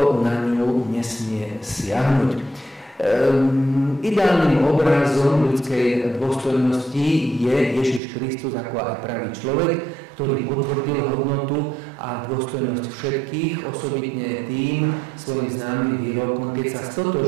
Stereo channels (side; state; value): left; drops out; at 8.0 s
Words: na ňu nesmie siahnuť. Ideálnym obrazom ľudskej dôstojnosti je Ježiš Kristus ako aj pravý človek, ktorý potvrdil hodnotu a dôstojnosť všetkých, osobitne tým svojim známym výrokom, keď sa